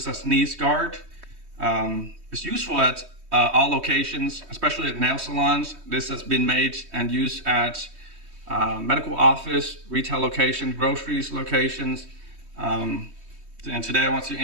a sneeze guard. It's useful at all locations, especially at nail salons. This has been made and used at medical office, retail locations, groceries locations. And today I want to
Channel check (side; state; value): left; late; 3.2 ms